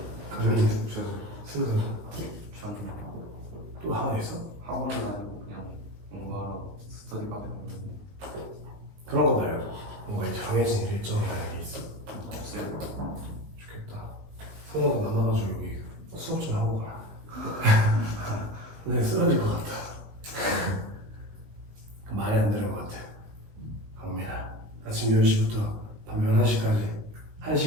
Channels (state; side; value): late; left; 19 ms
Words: 그러면 슬슬 또 하나 있어? 학원은 아니고 그냥 뭔가 스터디밖에 없는데 그런 거 말고 뭔가 정해진 일정이라는 게 있어. 없어요. 좋겠다. 선호가 만나가지고 여기 수업 좀 하고 가라. 근데 쓰러질 것 같다. 말이 안 되는 것 같아. 강민아, 아침 10시부터 밤 11시까지